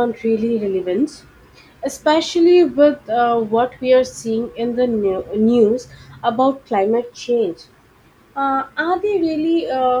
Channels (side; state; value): both; identical; correlation 1.00